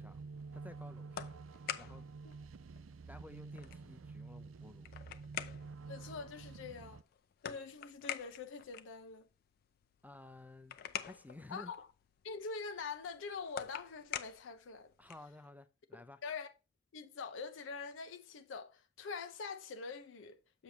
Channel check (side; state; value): right; quieter; 4.3 dB